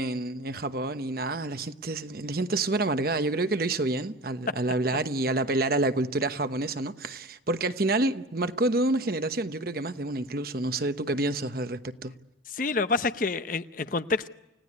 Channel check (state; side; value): normal; both; correlation 0.33